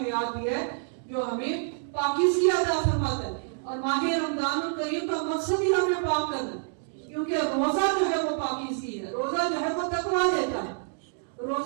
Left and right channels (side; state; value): left; silent; digital silence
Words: दिया है जो हमें पाकीज़गी अता फरमाता है। और माह रमजानुल करीम का मकसद ही हमें पाक करना है, क्योंकि रोजा जो है वो पाकीज़गी है, रोजा जो है वो तकवा देता है,